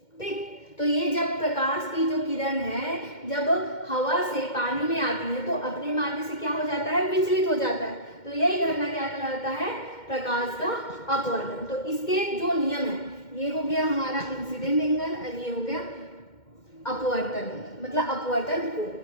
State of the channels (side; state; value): right; late; 2.1 ms